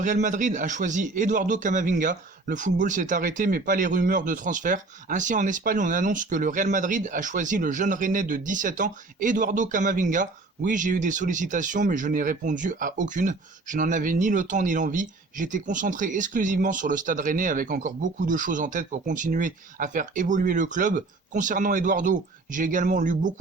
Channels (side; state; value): left; quieter; 3.5 dB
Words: Madrid a choisi Eduardo Camavinga. Le football s'est arrêté mais pas les rumeurs de transfert. Ainsi en Espagne on annonce que le Real Madrid a choisi le jeune rennais de 17 ans, Eduardo Camavinga. Oui, j'ai eu des sollicitations mais je n'ai répondu à aucune. Je n'en avais ni le temps ni l'envie. J'étais concentré exclusivement sur le stade rennais avec encore beaucoup de choses en tête pour continuer à faire évoluer le club. Concernant Eduardo, j'ai également lu